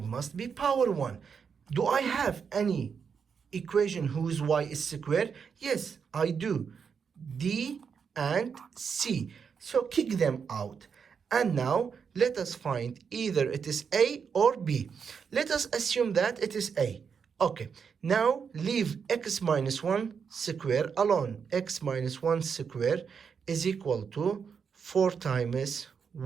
must be power 1. Do I have any equation whose y is square? Yes, I do. D and C. So kick them out. And now let us find either it is A or B. Let us assume that it is A. Okay, now leave x minus 1 square alone. X minus 1 square is equal to 4 times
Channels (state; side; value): quieter; left; 6.4 dB